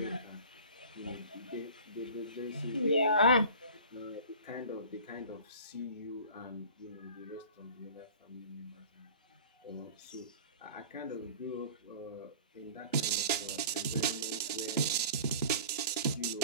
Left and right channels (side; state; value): both; inverted; correlation -0.43